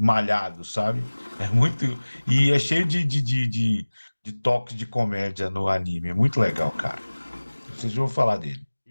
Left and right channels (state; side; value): inverted; both; correlation -1.00